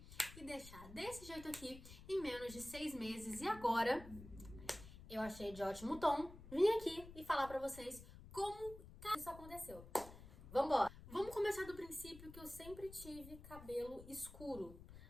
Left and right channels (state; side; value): noise; left; rumble, 15 dB below the sound